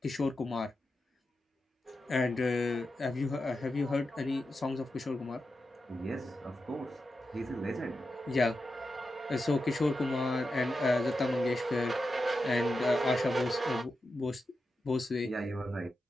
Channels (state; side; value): normal; both; correlation 0.89